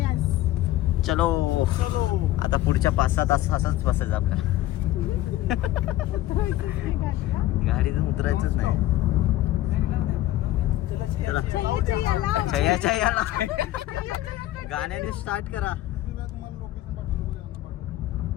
चलो आता पुढच्या 5-6 तास असंच बसायचं आपल्याला. गाडीतून उतरायचंच नाही. चला गाण्याने स्टार्ट करा.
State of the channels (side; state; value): right; quieter; 14.9 dB